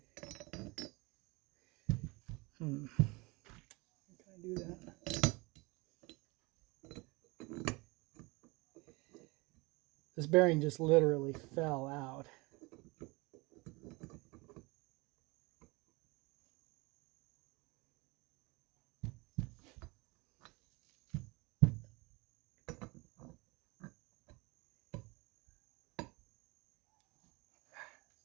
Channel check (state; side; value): quieter; left; 25.4 dB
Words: Can I do that? This bearing just literally fell out.